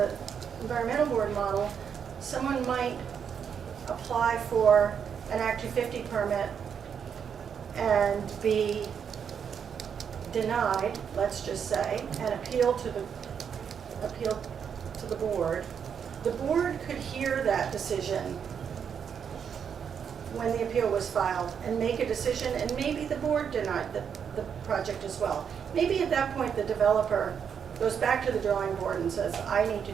environmental board model. Someone might apply for an Act 250 permit and be denied, let's just say, and appeal to the board. The board could hear that decision when the appeal was filed and make a decision, and maybe the board denied the project as well. Maybe at that point the developer goes back to the drawing board and says, I need to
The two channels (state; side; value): quieter; left; 7.4 dB